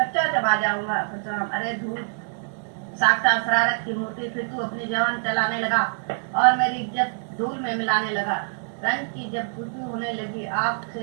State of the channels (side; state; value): left; silent; digital silence